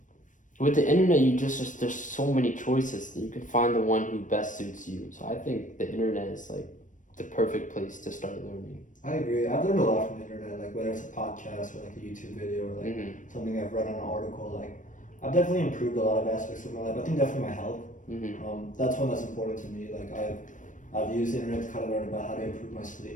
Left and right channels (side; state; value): right; late; 0.37 ms